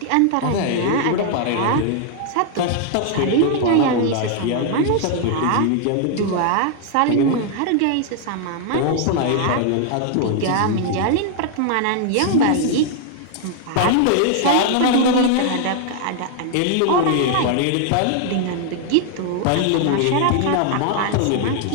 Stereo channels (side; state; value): both; different; correlation 0.00